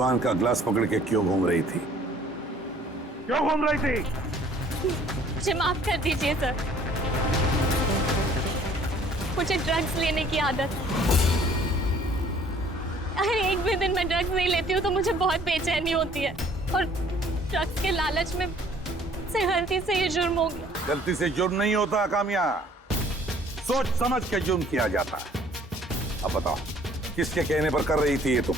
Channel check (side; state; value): both; normal; correlation 0.57